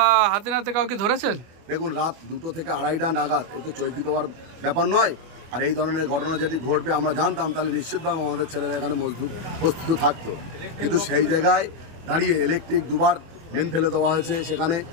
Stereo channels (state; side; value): late; left; 24 ms